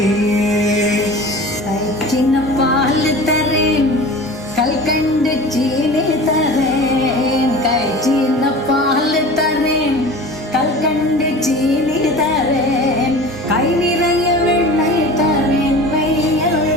சின்ன பால் தரேன் கல்கண்டு சீனி தரேன். சின்ன பால் தரேன் கல்கண்டு சீனி தரேன். கை நிறைய வெண்ணெய் தரேன்.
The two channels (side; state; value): both; normal; correlation 0.38